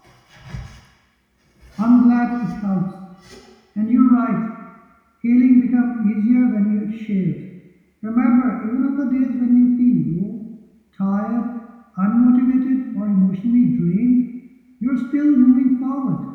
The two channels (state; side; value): identical; both; correlation 1.00